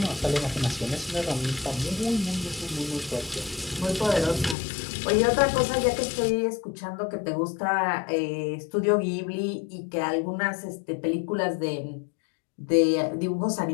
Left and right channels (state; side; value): drops out; right; at 4.5 s